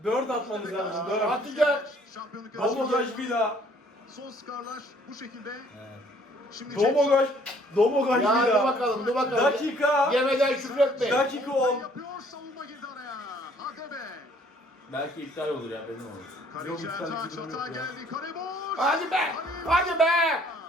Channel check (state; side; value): normal; both; correlation 0.60